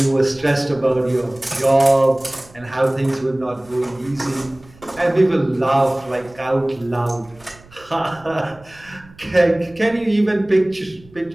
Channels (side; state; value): right; noise; rumble, 25 dB below the sound